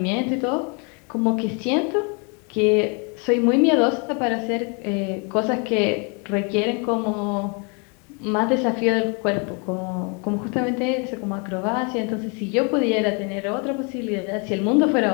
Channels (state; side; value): quieter; right; 34.9 dB